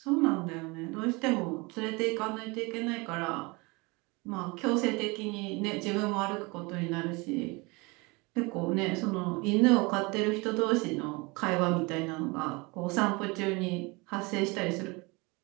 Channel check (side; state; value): left; quieter; 26.3 dB